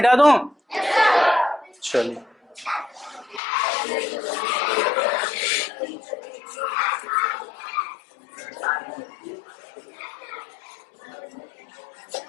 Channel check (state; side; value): drops out; right; at 3.4 s